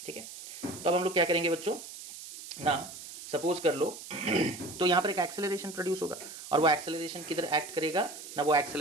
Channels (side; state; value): right; noise; hiss, 13 dB below the sound